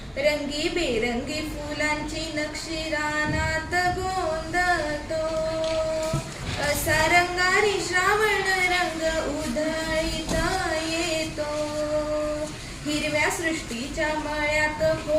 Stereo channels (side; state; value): both; identical; correlation 1.00